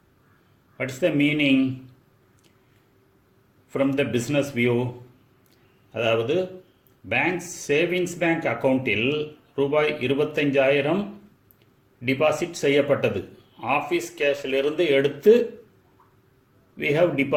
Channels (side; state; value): both; identical; correlation 1.00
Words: What is the meaning from the business view? அதாவது bank savings bank அக்கௌண்ட்டில் ரூபாய் 25,000 deposit செய்யப்பட்டது. Office கேஷிலிருந்து எடுத்து we have